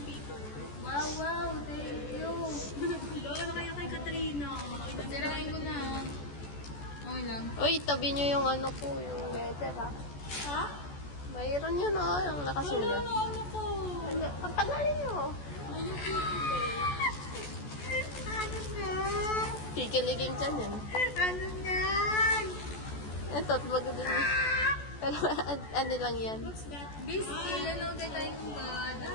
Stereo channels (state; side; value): late; right; 14 ms